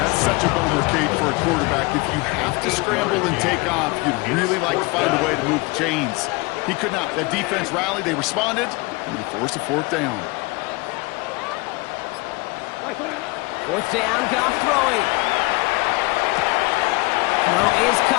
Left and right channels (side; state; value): right; quieter; 25.0 dB